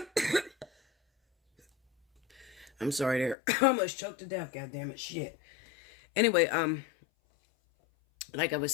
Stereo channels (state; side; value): drops out; right; at 3.4 s